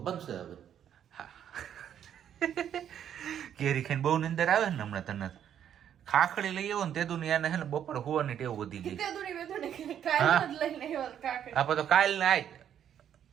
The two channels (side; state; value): left; quieter; 9.6 dB